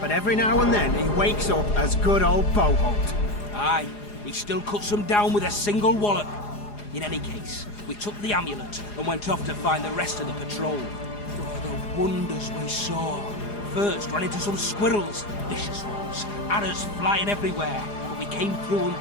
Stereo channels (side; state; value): right; late; 4.9 ms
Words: every now and then he wakes up as good old Boholt. Aye, he still cuts them down with a single wallop. In any case, we took the amulet and went off to find the rest of the patrol. Oh, the wonders we saw. First ran into some squirrels, vicious ones, arrows flying everywhere, but we came through